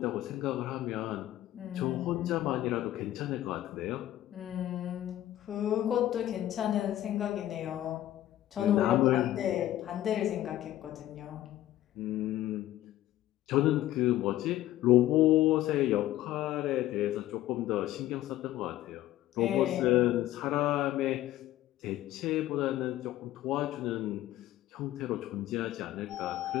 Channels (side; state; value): right; quieter; 14.0 dB